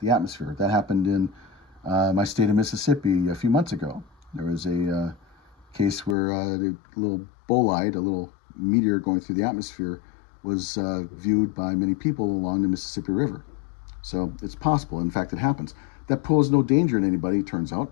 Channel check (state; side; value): drops out; right; at 6.2 s